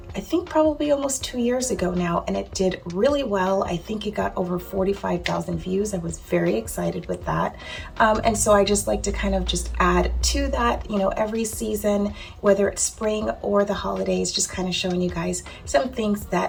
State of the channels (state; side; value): identical; both; correlation 1.00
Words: I think probably almost 2 years ago now, and it did really well. I think it got over 45,000 views. I was very excited with that. And so I just like to kind of just add to that, every season, whether it's spring or the holidays, just kind of showing you guys some things